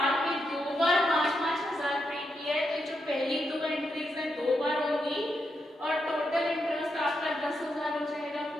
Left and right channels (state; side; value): normal; both; correlation 0.83